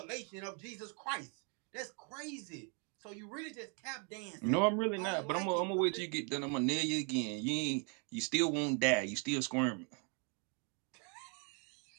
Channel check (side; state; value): left; quieter; 37.9 dB